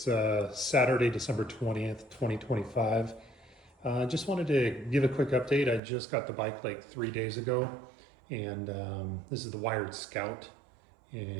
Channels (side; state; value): left; drops out; at 5.8 s